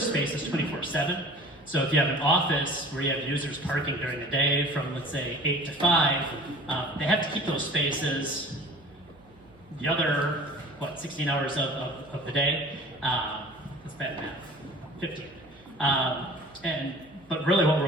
spaces 24/7. So if you have an office where you have users parking during the day from, let's say, 8 to 5, they have to keep those spaces the other, 16 hours of the day. That's bad math, 15. But really what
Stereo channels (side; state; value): right; noise; hum, 28 dB below the sound